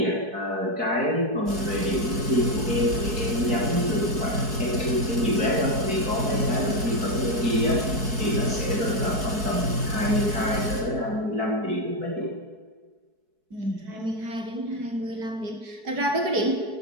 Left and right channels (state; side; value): late; left; 4.7 ms